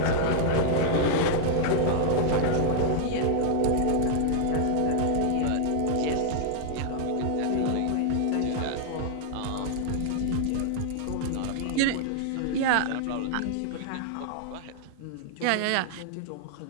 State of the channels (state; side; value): different; both; correlation -0.01